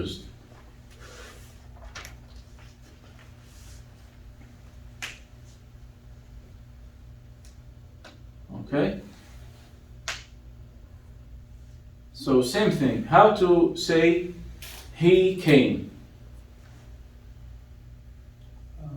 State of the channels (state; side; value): identical; both; correlation 1.00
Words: Okay? So same thing. How to say he came?